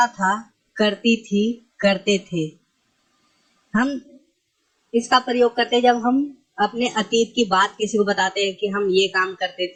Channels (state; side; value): identical; both; correlation 1.00